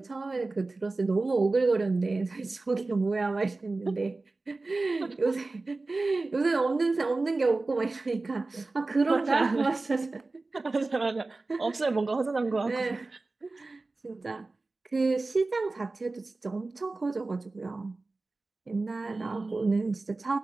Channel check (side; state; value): left; quieter; 3.4 dB